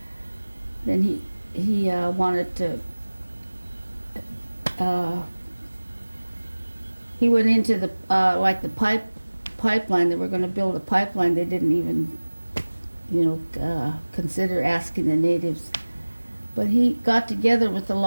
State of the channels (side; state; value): both; inverted; correlation -1.00